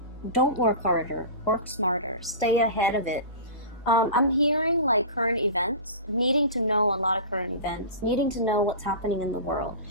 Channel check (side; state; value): both; inverted; correlation -0.32